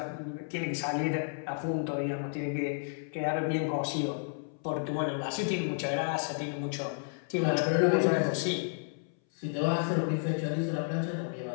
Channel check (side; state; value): right; silent; 57 dB below the other